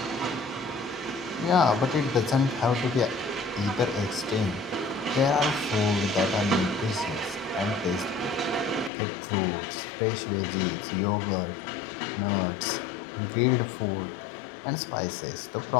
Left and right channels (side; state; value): right; drops out; at 8.9 s